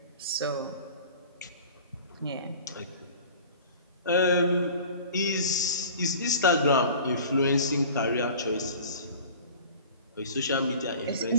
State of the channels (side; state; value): both; inverted; correlation -0.42